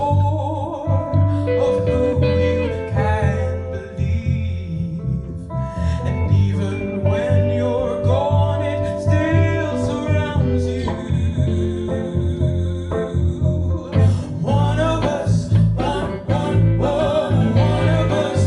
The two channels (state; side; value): identical; both; correlation 1.00